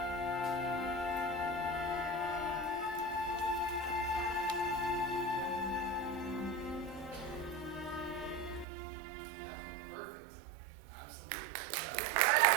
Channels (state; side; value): drops out; left; at 8.7 s